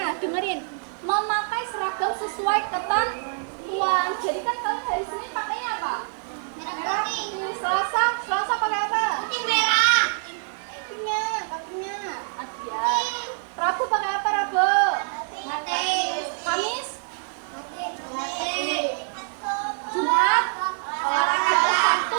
sesuai ketentuan. Jadi kan kalian hari Senin pakainya apa? Merah putih. Selasa pakai apa? Putih merah. Kakinya. Ya. Rabu pakai apa Rabu? Kamis? Jumat? Olahraga. Sabtu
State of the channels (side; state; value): left; silent; 61 dB below the other